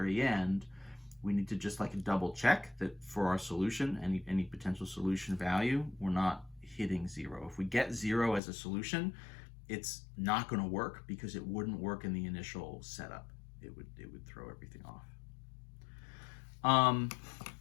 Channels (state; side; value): drops out; right; at 8.4 s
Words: end, we need to just like double check that for our solution, any potential solution value, we're not hitting 0. If we get 0 as a solution, it's not going to work because it wouldn't work in the initial setup. It would throw everything off.